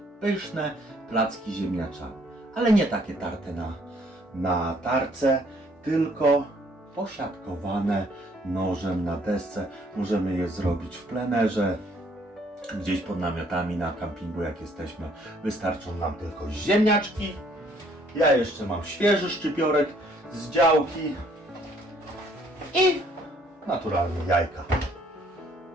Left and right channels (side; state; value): both; normal; correlation 0.63